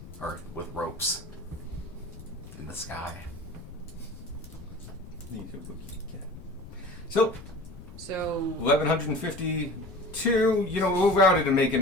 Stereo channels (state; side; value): noise; left; rumble, 16 dB below the sound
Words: or with ropes in the sky. Need a rookie cat. So, So 1152. You know, we'll round it and make it